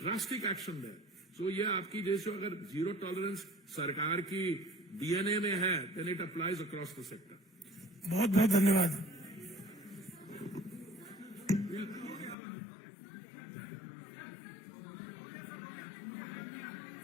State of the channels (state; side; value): drops out; right; at 12.4 s